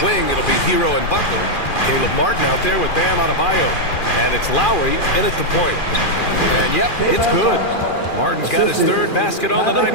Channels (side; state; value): right; late; 2.4 ms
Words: wing, it'll be Hero and Butler. Caleb Martin out there with Bam Adebayo. And it's Lowry in at the point. And yep, it's good. Martin's got his 3rd basket on the night